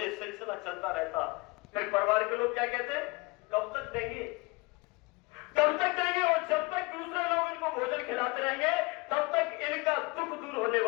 सिलसिला चलता रहता। फिर परिवार के लोग क्या कहते, कब तक देंगे, कब तक देंगे? और जब तक दूसरे लोग इनको भोजन खिलाते रहेंगे तब तक इनका दुख दूर होने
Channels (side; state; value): right; quieter; 25.6 dB